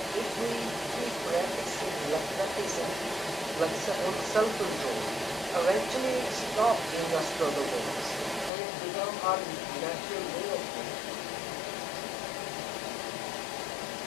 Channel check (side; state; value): right; drops out; at 8.5 s